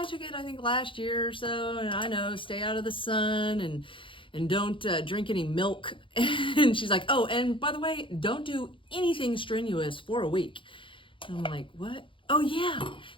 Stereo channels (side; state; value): right; late; 0.25 ms